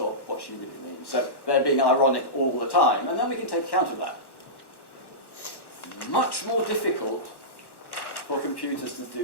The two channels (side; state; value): right; late; 1.1 ms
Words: what she really means, so they're being ironic all the time, and then we can take account of that. Much more difficult for computers to